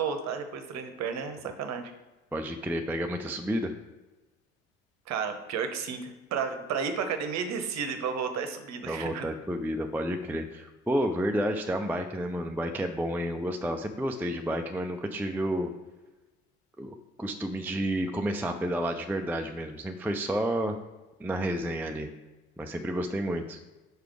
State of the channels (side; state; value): both; normal; correlation 0.65